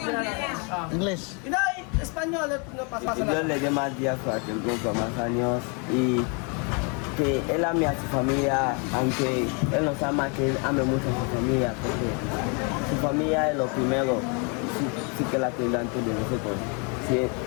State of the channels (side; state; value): right; quieter; 35.0 dB